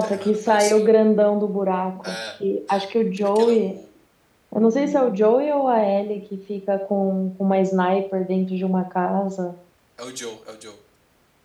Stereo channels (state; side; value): identical; both; correlation 1.00